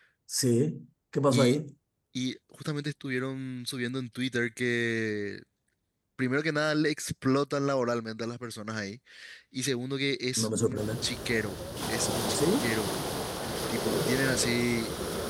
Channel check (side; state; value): both; identical; correlation 1.00